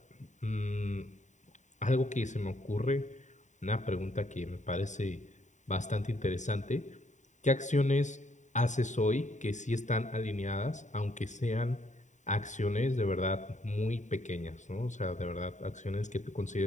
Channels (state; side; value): late; right; 0.35 ms